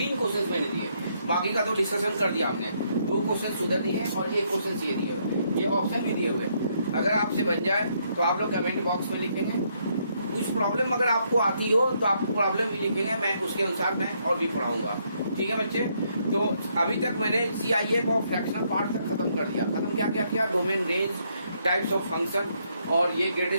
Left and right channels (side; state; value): both; inverted; correlation -0.73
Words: क्वेश्चंस मैंने दिए, बाकी का तो डिस्कशन कर दिया आपने। 2 क्वेश्चन सुधर दिए और 1 क्वेश्चन ये दिए हुए, ये ऑप्शन भी दिए हुए। अगर आपसे बन जाए तो आप लोग कमेंट बॉक्स में लिखेंगे। कुछ प्रॉब्लम अगर आपको आती हो तो आप प्रॉब्लम भी लिखेंगे, मैं उसके अनुसार मैं और भी पढ़ाऊंगा। ठीक है बच्चे, तो अभी तक मैंने CIF और फ्रैक्शनल पार्ट तक खत्म कर दिया। खत्म क्या किया? Domain, range, types of function और ये